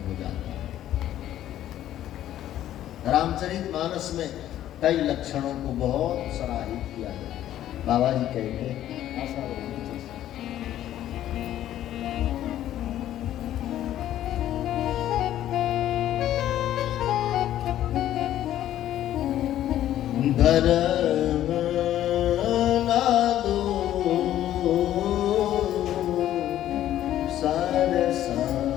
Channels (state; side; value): quieter; right; 12.4 dB